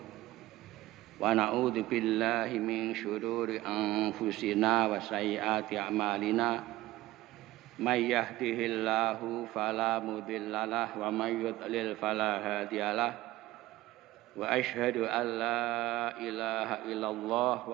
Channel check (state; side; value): quieter; left; 17.2 dB